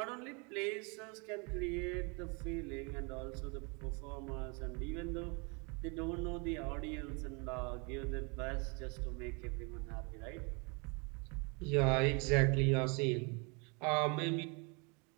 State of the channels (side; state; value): left; quieter; 32.2 dB